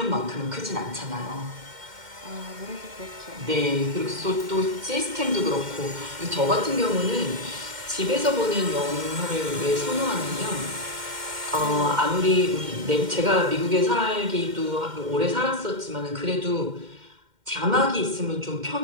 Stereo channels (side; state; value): left; late; 2.1 ms